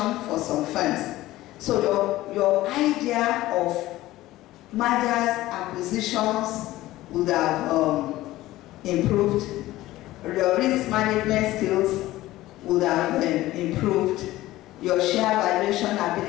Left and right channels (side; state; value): right; quieter; 16.6 dB